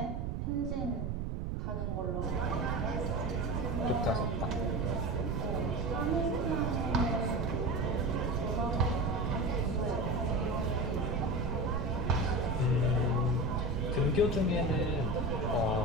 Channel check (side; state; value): right; noise; rumble, 2 dB below the sound